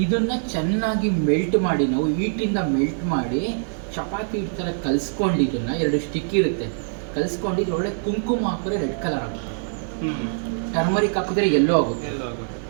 ಇದನ್ನ ಚೆನ್ನಾಗಿ ಮೆಲ್ಟ್ ಮಾಡಿ, ನಾವು ಹೀಟಿಂದ ಮೆಲ್ಟ್ ಮಾಡಿ ಚಪಾತಿ ಈ ಥರ ಕಲಿಸ್ಕೊಂಡು, ಇದನ್ನ 2 ಸ್ಟಿಕ್ ಇರುತ್ತೆ, ಕಲಿಸ್ಕೊಂಡು ಇದ್ರೊಳಗೆ ಕುಂಕುಮ ಹಾಕಿದ್ರೆ ರೆಡ್ ಕಲರ್ ಆಗುತ್ತೆ, ಟರ್ಮರಿಕ್ ಹಾಕಿದ್ರೆ ಯೆಲ್ಲೋ ಆಗುತ್ತೆ,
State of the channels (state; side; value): silent; left; digital silence